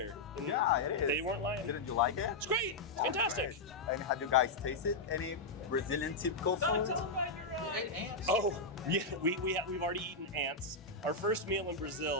And Yeah, it is. they weren't lying. Didn't you like it? It's great. It's fantastic. And have you guys tasted any Brazilian typical food? Tell them about your ants. Oh, yeah, we've already eaten ants. Our first meal in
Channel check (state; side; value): quieter; right; 3.2 dB